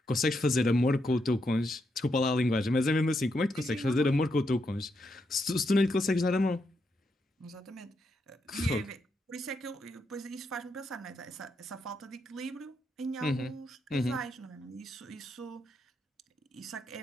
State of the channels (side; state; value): both; normal; correlation 0.81